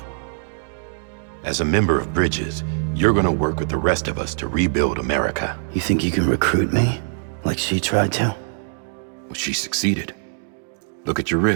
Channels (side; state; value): left; silent; 63 dB below the other